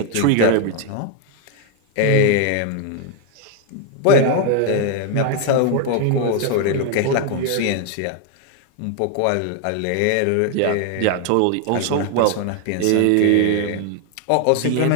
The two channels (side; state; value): both; different; correlation 0.01